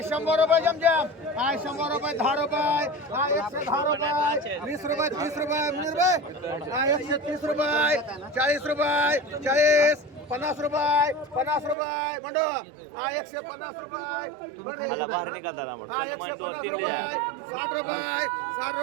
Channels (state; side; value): drops out; left; at 11.8 s